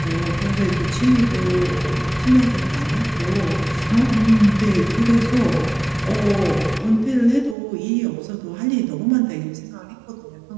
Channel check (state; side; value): drops out; left; at 7.6 s